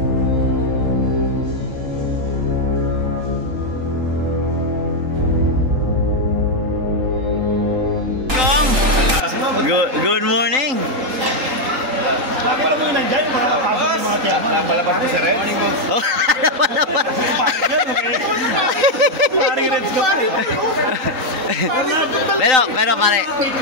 Good morning. Nakita mo yun nandyan, yung mga kapasok ng mga chairman. Napalabas ko si Red. Oh, pero pare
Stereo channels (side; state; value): left; late; 3.8 ms